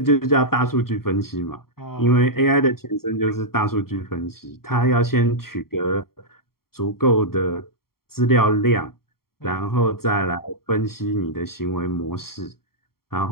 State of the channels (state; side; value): late; right; 0.93 ms